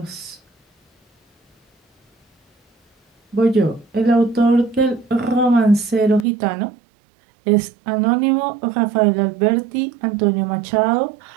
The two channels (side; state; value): left; drops out; at 6.2 s